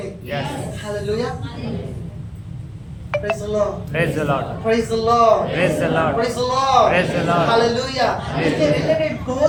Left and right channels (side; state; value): both; identical; correlation 1.00